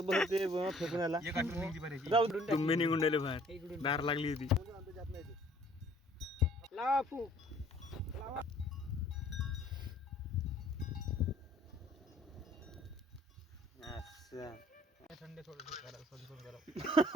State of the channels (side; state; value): both; normal; correlation 0.57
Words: ते फेकून आला एक आठवण निघली पाहिजे जाऊ तुम्ही निघून राहिले बाहेर दार लागली होती लावा फूक थंड थोडं